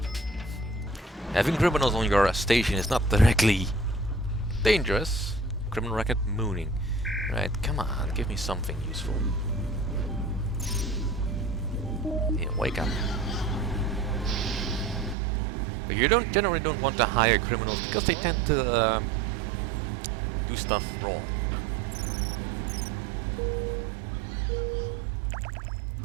Having criminals on your station is not directly dangerous. Criminal record mooning. Right, come on, give me something useful. Yeah, wake up. But you generally don't want to hire criminals because they tend to do stuff wrong.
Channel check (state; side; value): drops out; left; at 15.2 s